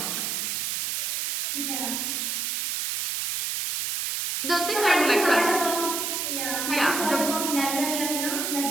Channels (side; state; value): right; noise; hiss, 1 dB below the sound